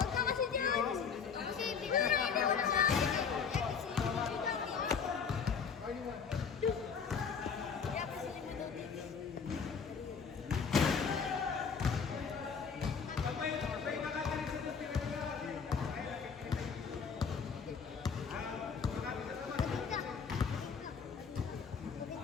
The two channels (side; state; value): right; quieter; 6.1 dB